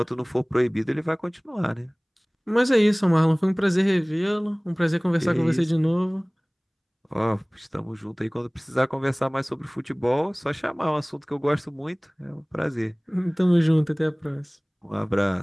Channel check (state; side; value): identical; both; correlation 1.00